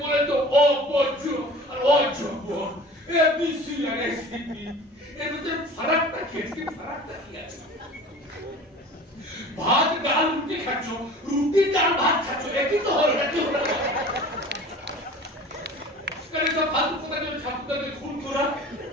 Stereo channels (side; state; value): both; normal; correlation 0.41